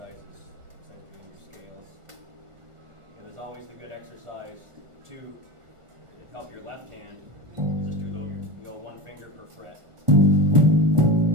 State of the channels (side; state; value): left; late; 1.4 ms